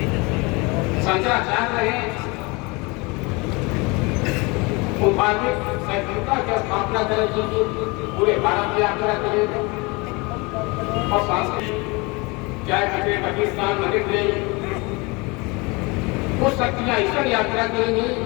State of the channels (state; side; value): quieter; right; 26.8 dB